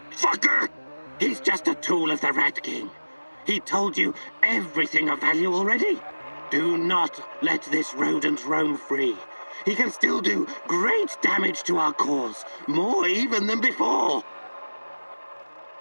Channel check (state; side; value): inverted; both; correlation -1.00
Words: Fucker! He's just a tool of the Rat King. He told you everything of value already. Do not let this rodent roam free. he can still do great damage to our cause, more even than before.